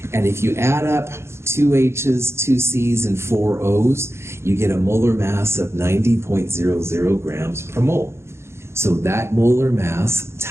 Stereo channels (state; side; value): late; left; 0.13 ms